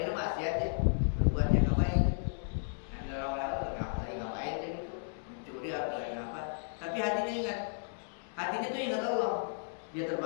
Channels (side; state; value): right; silent; digital silence